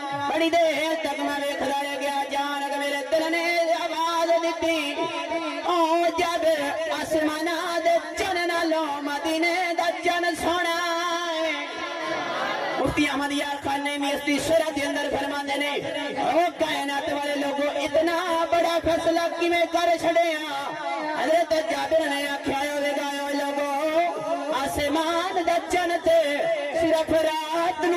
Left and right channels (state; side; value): identical; both; correlation 1.00